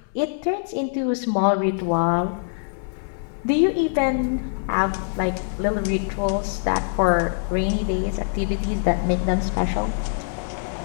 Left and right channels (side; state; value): right; silent; digital silence